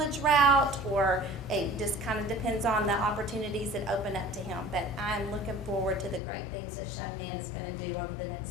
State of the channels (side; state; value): right; drops out; at 6.2 s